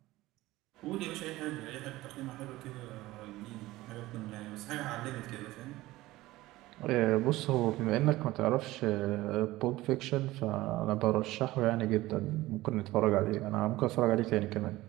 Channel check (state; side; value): quieter; left; 17.9 dB